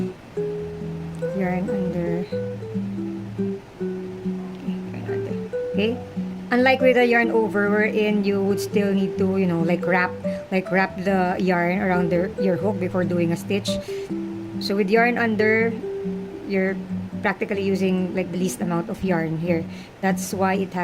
yarn under. Okay, yarn under. Okay? Unlike with the yarn over, wherein you would still need to, you know, like wrap the yarn around your hook before doing a stitch. So with yarn under, you're practically using like the least amount of yarn here. That's why it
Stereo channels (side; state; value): both; identical; correlation 1.00